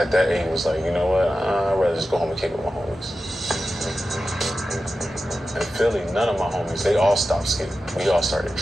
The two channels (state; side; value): normal; both; correlation 0.93